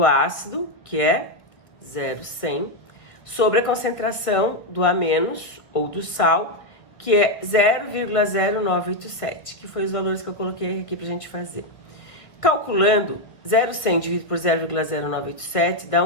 ácido, que é 0,100, sobre a concentração do A-, ou do sal, que é 0,0987, que foi os valores que eu coloquei aqui pra gente fazer. Calculando, 0,100 dividido por 0,0987 dá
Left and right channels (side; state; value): right; late; 1.6 ms